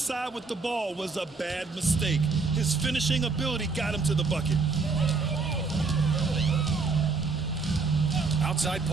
with the ball was a bad mistake. His finishing ability got him to the bucket. Outside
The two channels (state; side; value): quieter; left; 4.2 dB